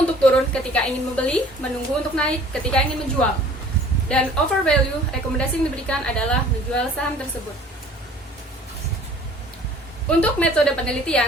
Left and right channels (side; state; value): both; normal; correlation 0.51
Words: turun ketika ingin membeli, menunggu untuk naik ketika ingin menjual. Dan over value, rekomendasi yang diberikan adalah menjual saham tersebut. Untuk metode